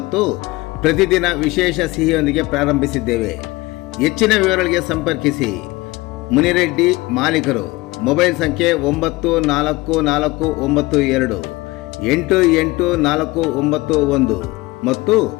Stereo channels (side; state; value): right; quieter; 21.4 dB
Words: ಪ್ರತಿದಿನ ವಿಶೇಷ ಸಿಹಿಯೊಂದಿಗೆ ಪ್ರಾರಂಭಿಸಿದ್ದೇವೆ. ಹೆಚ್ಚಿನ ವಿವರಗಳಿಗೆ ಸಂಪರ್ಕಿಸಿ ಮುನಿರೆಡ್ಡಿ, ಮಾಲೀಕರು. ಮೊಬೈಲ್ ಸಂಖ್ಯೆ 9492884491 ಮತ್ತು